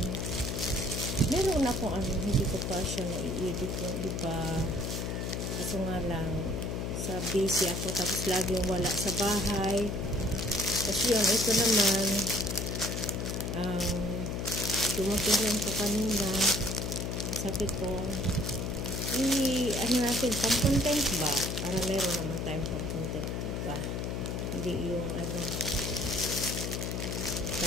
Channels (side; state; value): left; noise; hum, 2 dB below the sound